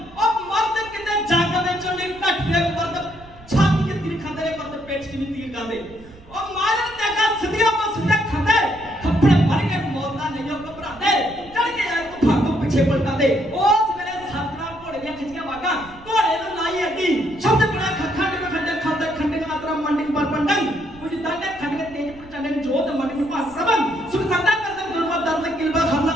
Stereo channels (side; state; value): right; noise; rumble, 22 dB below the sound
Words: ਮਰਦ ਕਿਤੇ ਜੱਗ ਵਿੱਚ ਨਹੀਂ ਘੱਟਦੇ ਮਰਦ ਛਾਤੀ ਤੇ ਤੀਰ ਖਾਂਦੇ ਨੇ ਮਰਦ ਪੇਟ 'ਚ ਨਹੀਂ ਤੀਰ ਖਾਂਦੇ ਉਹ ਮਾਰਨ ਤੇ ਕਾ ਸਿੱਧੀਆਂ ਤੋਂ ਸਿੱਧੇ ਖਾਂਦੇ मन पास सबन सुख संता करदम गुरबत दर्द किलबा हल्ला